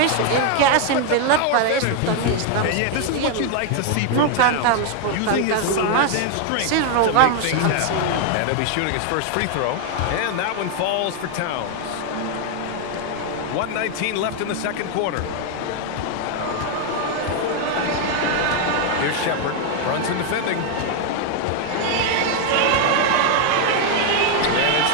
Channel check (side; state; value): both; different; correlation 0.00